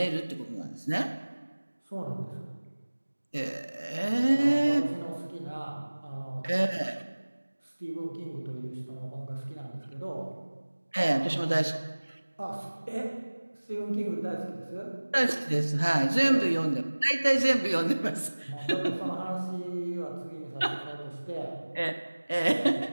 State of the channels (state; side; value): inverted; both; correlation -1.00